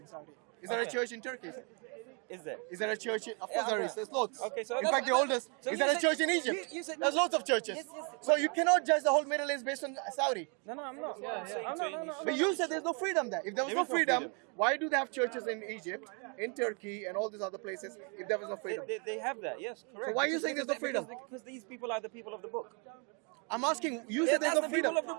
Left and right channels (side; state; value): left; quieter; 36.5 dB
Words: Saudi. Is there a Okay. church in Turkey? Is there? Is there a church in... Of Yeah, course there okay. is. There's lots. Okay, so in that's- fact, the oldest. so Is you there a said- church in Egypt? you said- There's lots of churches. Yes. So you cannot judge the whole Middle East based on Saudi. No, I'm not. No. But you said there's no freedom there. If there was There no is no freedom, freedom. why do they have churches in Egypt, in Turkey, and all these other places if there was no freedom? They have that, yes, correct. So why are you saying there's no freedom? Because these people are the people of the book. I'm asking, you Yeah, said there's that's no the freedom. people of the